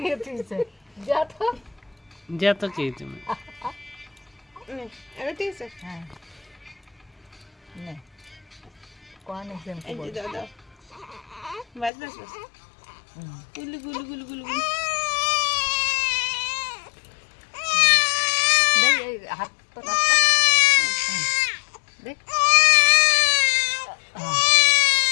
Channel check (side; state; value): right; drops out; at 11.9 s